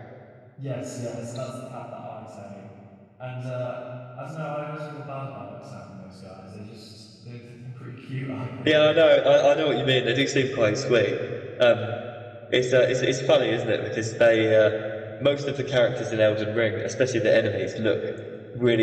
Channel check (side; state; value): both; identical; correlation 1.00